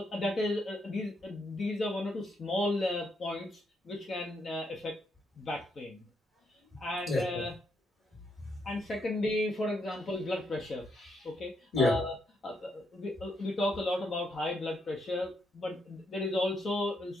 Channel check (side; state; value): both; normal; correlation 0.78